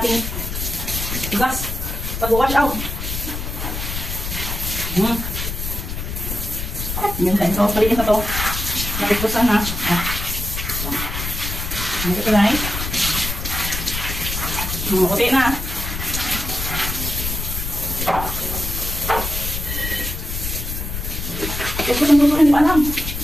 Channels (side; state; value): left; noise; rumble, 5 dB below the sound